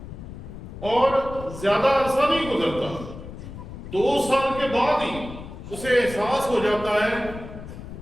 اور زیادہ عرصہ نہیں گزرتا، 2 سال کے بعد ہی اسے احساس ہو جاتا ہے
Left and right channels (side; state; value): left; noise; rumble, 12 dB below the sound